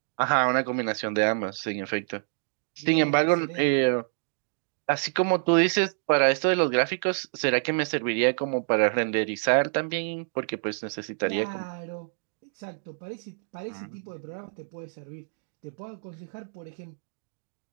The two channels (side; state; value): left; silent; digital silence